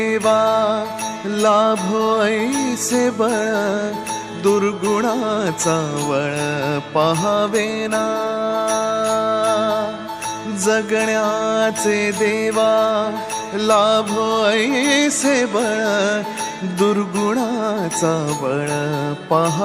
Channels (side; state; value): both; identical; correlation 1.00